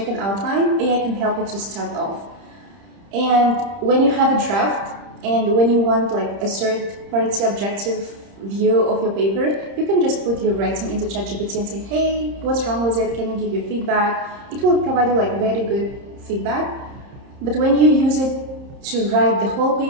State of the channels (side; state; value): left; late; 30 ms